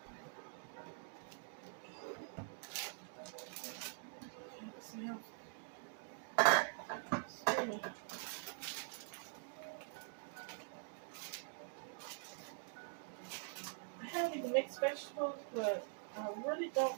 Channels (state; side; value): silent; left; digital silence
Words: See how steaming. I have even mixed vegetables, but I really